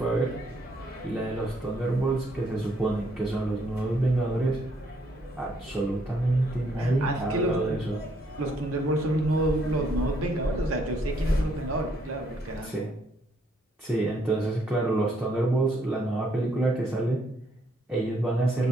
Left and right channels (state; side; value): normal; both; correlation 0.70